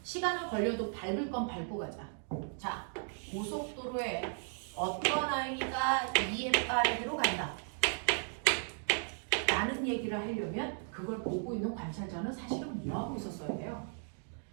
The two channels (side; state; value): left; silent; 54 dB below the other